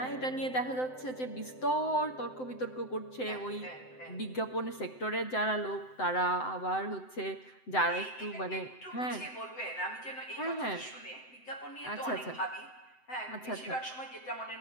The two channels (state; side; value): late; right; 7.8 ms